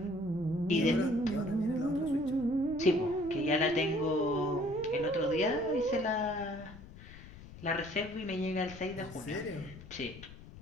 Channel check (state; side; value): noise; left; rumble, 16 dB below the sound